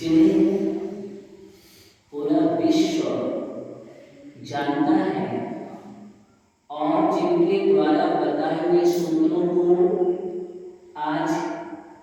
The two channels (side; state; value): both; identical; correlation 1.00